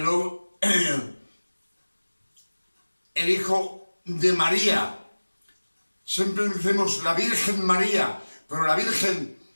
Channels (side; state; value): both; inverted; correlation -1.00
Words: hijo de María. Siempre decimos la Virgen María, pero la Virgen